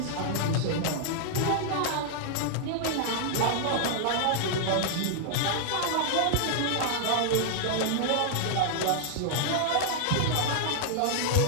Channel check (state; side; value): different; both; correlation -0.01